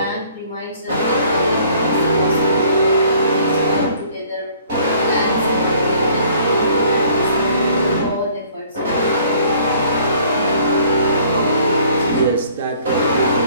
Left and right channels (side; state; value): both; inverted; correlation -0.57